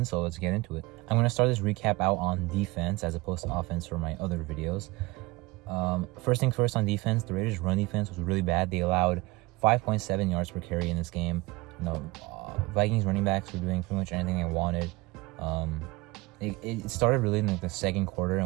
So let's get into it. I'm gonna start this recap out on defense as opposed to offense for my other videos. First thing first, on defense, the Raiders' run defense was really bad. They allowed 5.7 yards per carry in this game. Vikings running backs were doing pretty much anything they wanted. It started really in the second quarter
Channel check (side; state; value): left; quieter; 22.7 dB